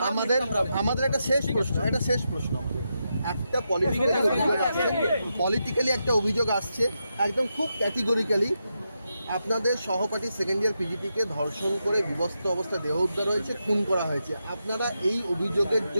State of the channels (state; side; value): inverted; both; correlation -0.85